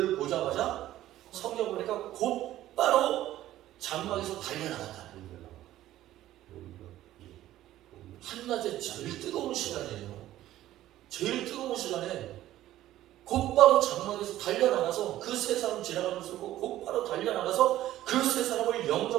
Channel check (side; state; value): left; quieter; 14.0 dB